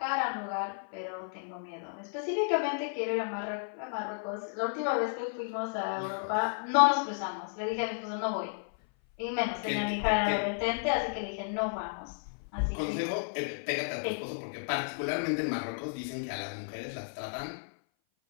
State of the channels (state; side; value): silent; right; 56 dB below the other